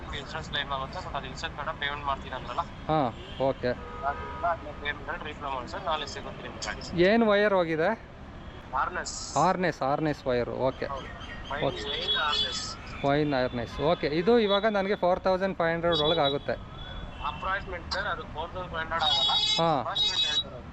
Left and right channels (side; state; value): both; identical; correlation 1.00